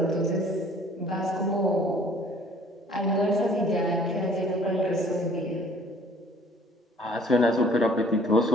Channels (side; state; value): both; normal; correlation 0.55